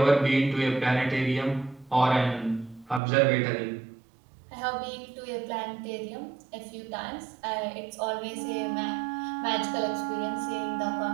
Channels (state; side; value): drops out; left; at 3.0 s